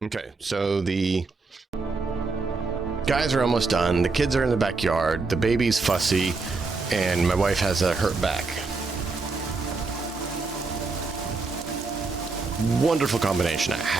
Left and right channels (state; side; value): quieter; left; 4.0 dB